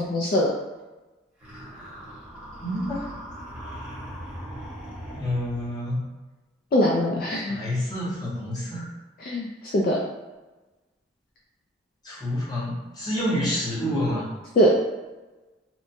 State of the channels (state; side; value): normal; both; correlation 0.47